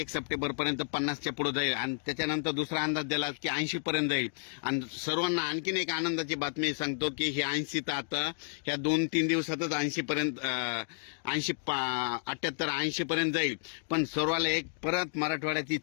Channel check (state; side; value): silent; right; 57 dB below the other